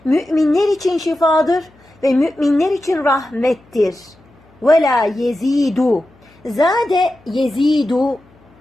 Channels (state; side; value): noise; left; hum, 30 dB below the sound